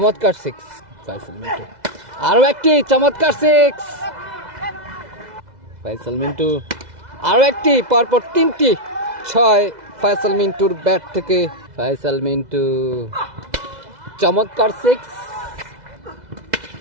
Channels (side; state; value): left; late; 2.0 ms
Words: সিক্স ফয়সাল মিন্টু আরো একটি চমৎকার সিক্স ফয়সাল মিন্টু আরো একটি পরপর তিনটি ছয় ফয়সাল মিন্টুর ব্যাট থেকে ফয়সাল মিন্টু চমৎকার সিক্স